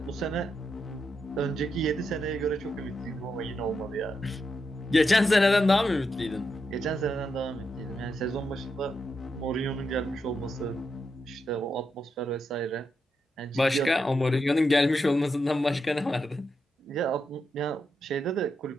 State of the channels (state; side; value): normal; both; correlation 0.84